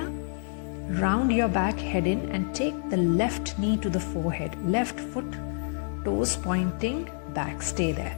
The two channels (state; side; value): silent; right; digital silence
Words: round your back, head in and take the left knee to the forehead. Left foot, toes pointing back. Stay there.